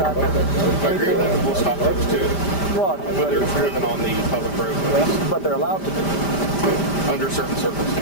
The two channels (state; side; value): late; right; 5.0 ms